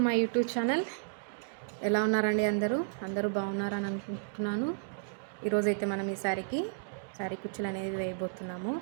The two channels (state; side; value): silent; left; digital silence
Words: my YouTube channel. ఎలా ఉన్నారండి? అందరూ బాగున్నారని అనుకుంటున్నాను. ఈరోజైతే మనం ఈ శారీ కుచ్చులు అనేది వేయబోతున్నాము.